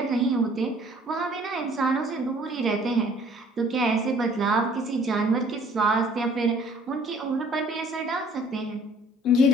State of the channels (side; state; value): both; normal; correlation 0.56